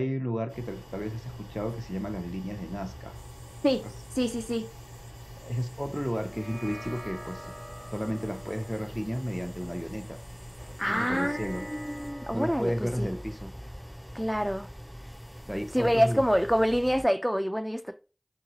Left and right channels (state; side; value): identical; both; correlation 1.00